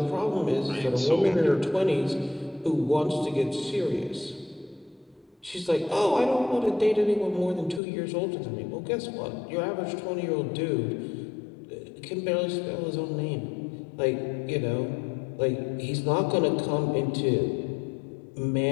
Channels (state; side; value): drops out; right; at 7.8 s